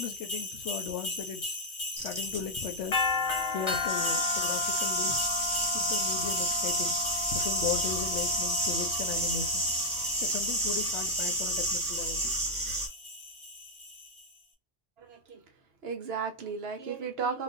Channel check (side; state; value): both; normal; correlation -0.02